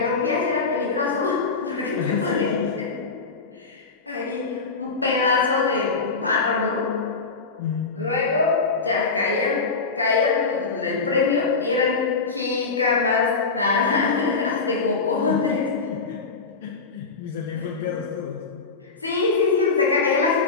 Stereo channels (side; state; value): right; quieter; 4.4 dB